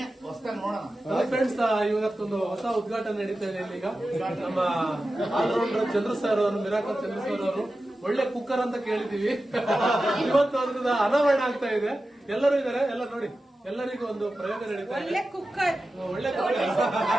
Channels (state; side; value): normal; both; correlation 0.93